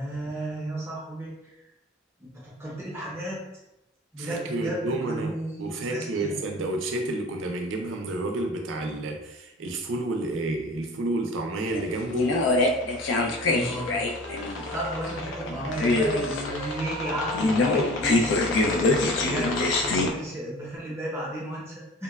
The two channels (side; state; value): both; normal; correlation 0.41